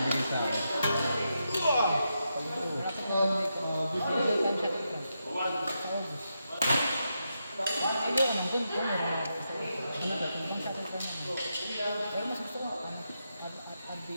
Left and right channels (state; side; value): inverted; both; correlation -0.85